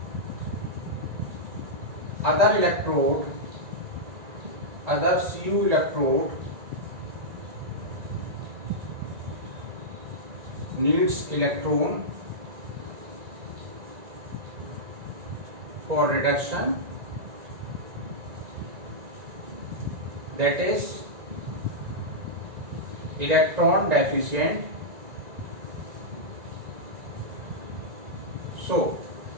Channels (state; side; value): late; left; 1.9 ms